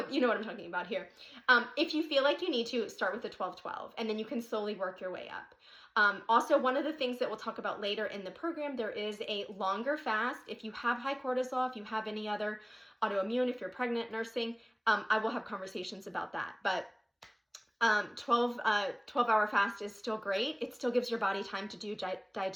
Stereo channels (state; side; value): identical; both; correlation 1.00